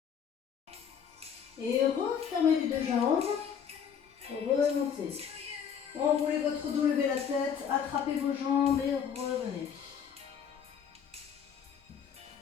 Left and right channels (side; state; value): right; quieter; 7.6 dB